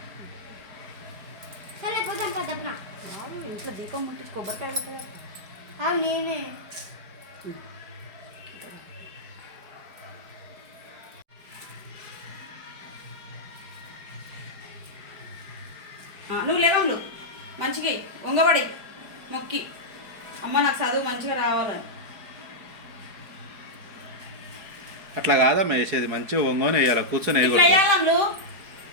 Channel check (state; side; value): late; left; 4.7 ms